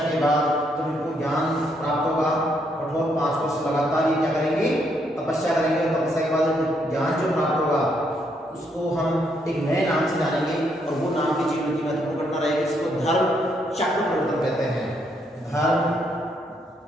के बाद, तो इनको ज्ञान प्राप्त होगा। कठोर 5 वर्ष लगातार ये क्या करेंगे? तपस्या करेंगे। तपस्या के बाद ज्ञान जो प्राप्त होगा उसको हम एक नए नाम से जानेंगे और वो नाम की जीवन की महत्वपूर्ण घटना रहेगी, इसको धर्म चक्र परिवर्तन कहते हैं। धर्म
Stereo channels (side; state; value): both; normal; correlation 0.74